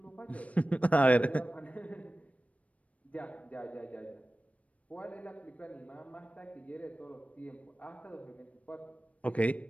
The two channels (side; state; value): right; late; 0.066 ms